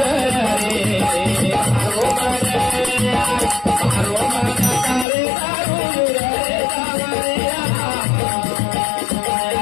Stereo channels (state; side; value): drops out; right; at 5.1 s